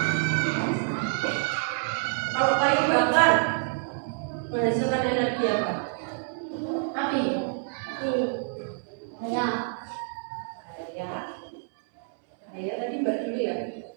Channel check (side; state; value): left; silent; 59 dB below the other